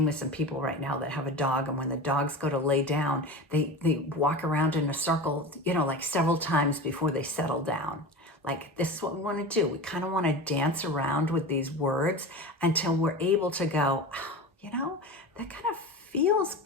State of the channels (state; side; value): normal; both; correlation 0.29